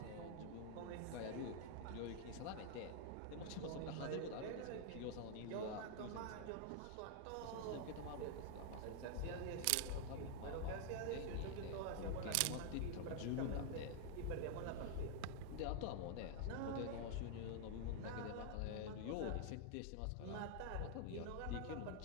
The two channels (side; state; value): both; different; correlation 0.00